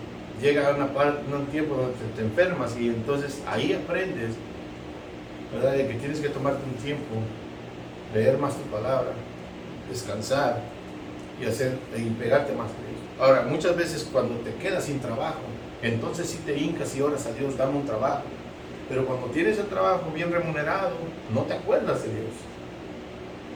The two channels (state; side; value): identical; both; correlation 1.00